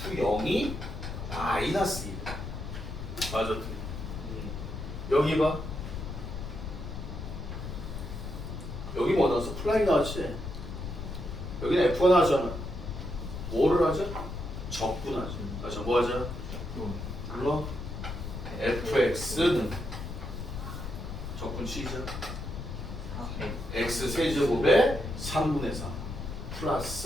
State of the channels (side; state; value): left; noise; rumble, 7 dB below the sound